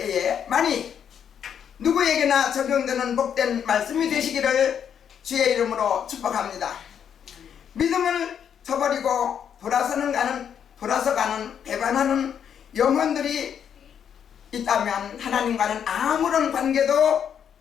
만일 누구에게나 적용되는 복된 말씀이 되시기를 주의 이름으로 축복합니다. 믿음을 저버리고 돌아서 가는 배반하는 영혼들이 있다면 하나님과는 아무런 관계도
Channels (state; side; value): quieter; right; 8.3 dB